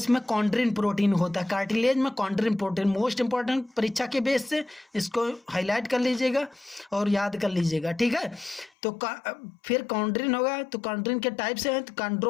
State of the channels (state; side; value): drops out; right; at 8.7 s